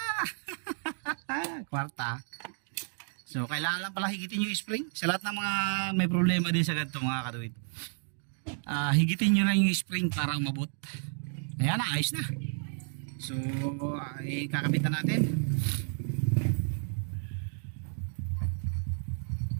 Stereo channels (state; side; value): silent; left; 57 dB below the other